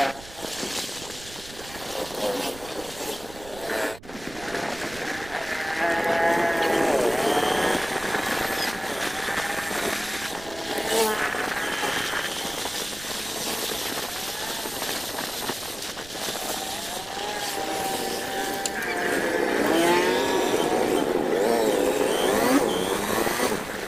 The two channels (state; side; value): noise; right; rumble, 18 dB below the sound